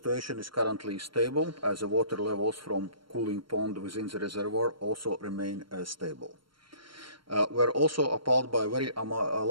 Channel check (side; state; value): left; late; 0.73 ms